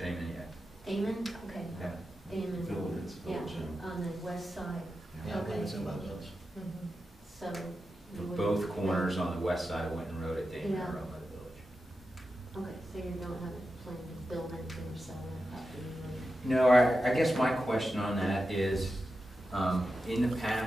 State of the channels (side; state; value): both; normal; correlation 0.90